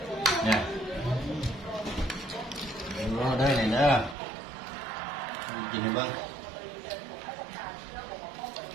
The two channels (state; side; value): drops out; left; at 4.2 s